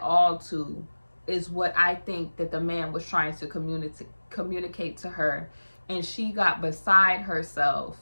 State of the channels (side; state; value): both; inverted; correlation -1.00